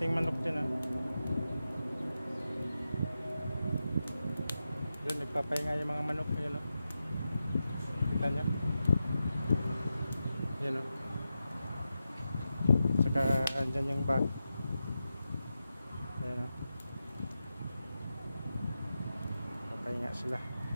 manok dyan ah. Yun, nagpapahinga yung mga manok. Ayan oh. Kita nyo? Ayan oh. Saka andyan yung bag. Ayan oh. Papahinga sila.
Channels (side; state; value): both; inverted; correlation -0.90